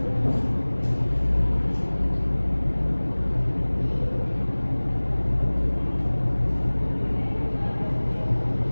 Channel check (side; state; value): both; inverted; correlation -1.00